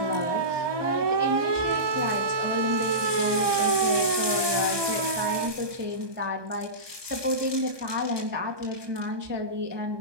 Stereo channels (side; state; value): left; late; 1.2 ms